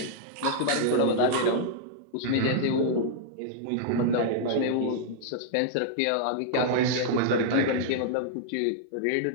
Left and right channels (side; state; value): both; different; correlation -0.01